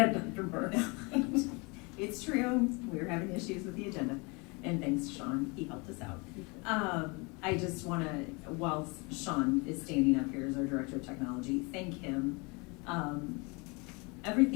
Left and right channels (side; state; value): right; quieter; 28.9 dB